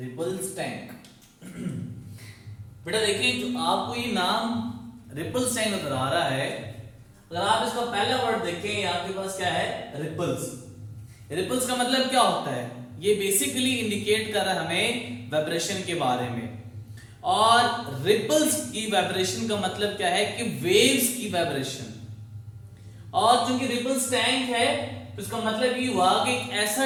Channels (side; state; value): both; identical; correlation 1.00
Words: टैंक। बेटा देखिए, जो आपको ये नाम रिपल्स टैंक नजर आ रहा है, अगर आप इसका पहला वर्ड देखें आपके पास क्या है, रिपल्स। रिपल्स का मतलब क्या होता है? ये बेसिकली इंडिकेट कर रहा है हमें वाइब्रेशन के बारे में। और रिपल्स की वाइब्रेशन का मतलब क्या है कि वेव्स की वाइब्रेशन। और चूंकि रिपल्स टैंक है तो इसका मतलब ये हुआ कि एक ऐसा